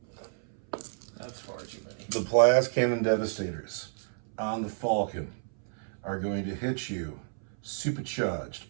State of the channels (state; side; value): silent; left; 57 dB below the other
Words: That's far too many. The plas cannon devastators on the Falcon are going to hit you supercharged